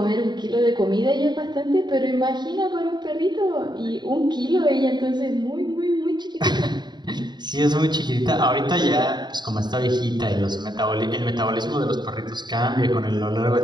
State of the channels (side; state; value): left; late; 0.21 ms